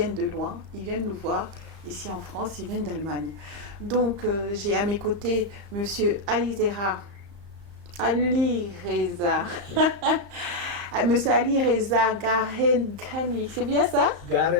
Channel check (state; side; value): late; left; 35 ms